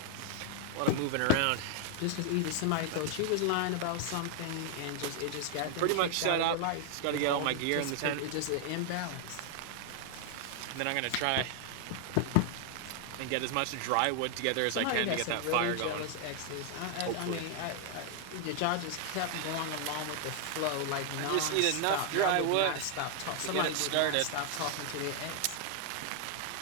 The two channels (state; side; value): different; both; correlation 0.00